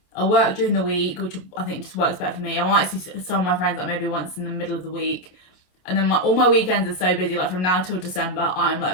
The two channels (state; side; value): late; right; 27 ms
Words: I work during the week, which I think just works better for me. I might see some of my friends like maybe once in the middle of the week, and then all my weekends are so busy. Like from now till December, I'm